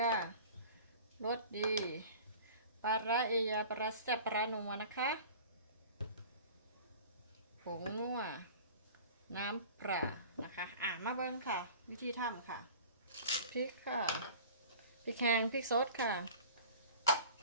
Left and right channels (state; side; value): inverted; both; correlation -0.42